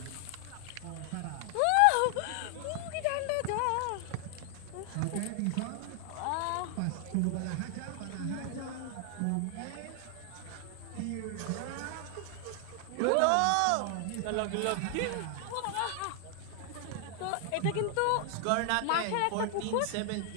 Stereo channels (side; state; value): both; different; correlation 0.00